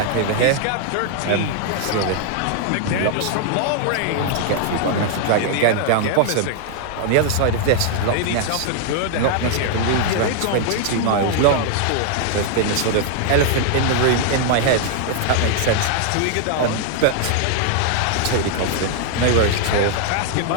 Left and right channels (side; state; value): both; different; correlation 0.00